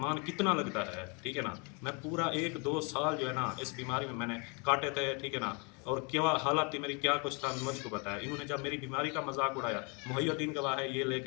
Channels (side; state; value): right; quieter; 33.0 dB